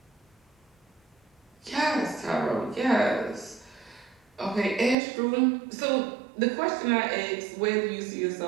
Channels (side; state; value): left; drops out; at 5.0 s